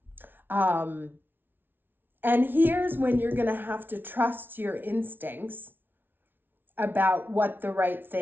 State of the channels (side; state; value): left; late; 0.10 ms